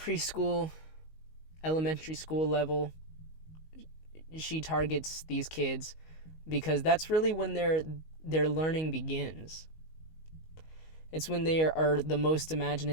elementary school level, she targets these kids because that's really when their learning begins. It's when they are the most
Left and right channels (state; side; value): late; right; 19 ms